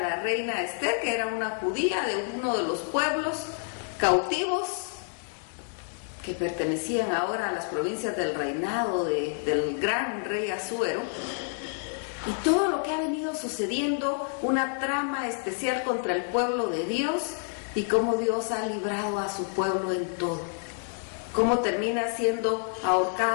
reina Esther, que era una judía de uno de los pueblos cautivos que pertenecían ahora a las provincias del reinado del gran rey Asuero, y todo lo que ha venido sucediendo, una trama especial contra el pueblo de Dios y cómo Dios ha librado a su pueblo en todo, cómo termina siendo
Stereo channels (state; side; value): silent; right; 59 dB below the other